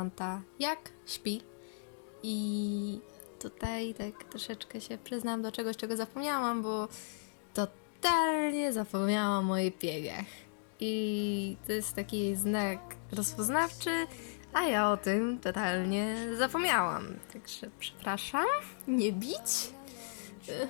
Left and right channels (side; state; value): right; silent; digital silence